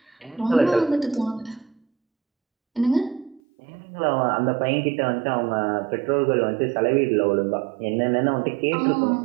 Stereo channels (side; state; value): left; drops out; at 3.4 s